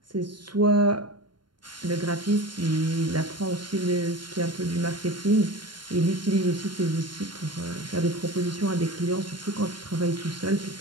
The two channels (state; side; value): late; left; 0.72 ms